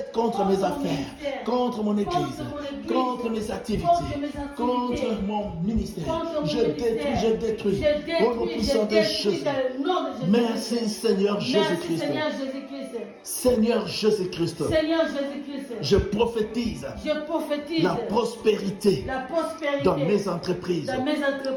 contre mes affaires, contre mon église, contre mes activités, contre mon ministère. Je détruis. Au nom puissant de Jésus. Merci Seigneur Jésus-Christ. Seigneur Jésus-Christ. Je prophétise la prospérité dans mes entreprises,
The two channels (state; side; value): identical; both; correlation 1.00